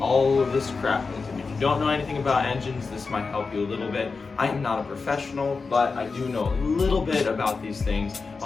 of this crap is. And if you don't know anything about engines, this might help you a little bit. I am not a professional, but I do know a little bit about these things.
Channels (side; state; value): right; quieter; 4.5 dB